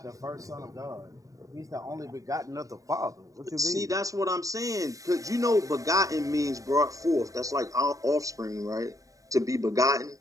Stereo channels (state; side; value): late; left; 0.16 ms